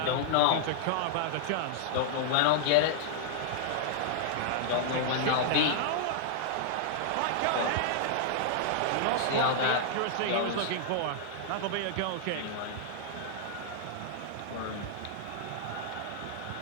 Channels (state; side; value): different; both; correlation -0.01